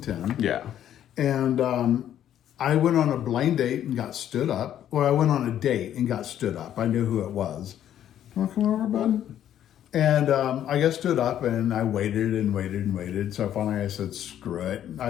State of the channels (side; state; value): right; quieter; 10.8 dB